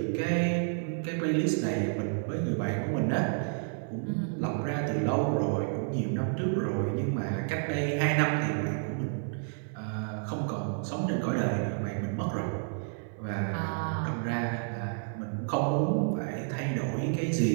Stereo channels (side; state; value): left; silent; 58 dB below the other